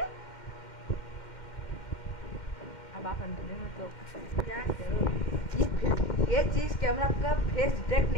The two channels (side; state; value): right; late; 2.1 ms